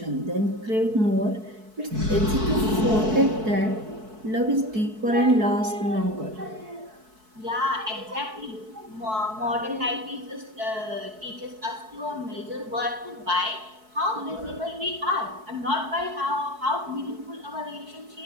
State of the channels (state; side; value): late; left; 4.6 ms